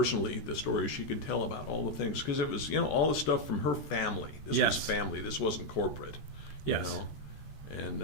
the stories she could tell about all the things, because it was all the stuff from her family. This Yes. was family. This wasn't corporate. Yes.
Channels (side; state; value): right; late; 14 ms